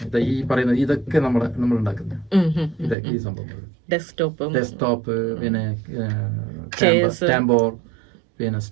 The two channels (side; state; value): left; drops out; at 3.0 s